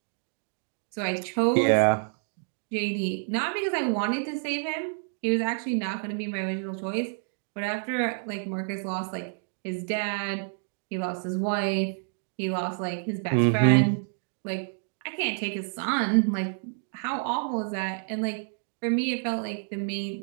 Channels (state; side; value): silent; left; 59 dB below the other